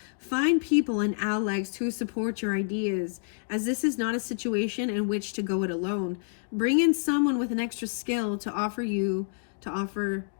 Find people and allies to support your ideas, as this is not a situation in which to go it alone. Bring in someone with an extra skill to offer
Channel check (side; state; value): right; silent; digital silence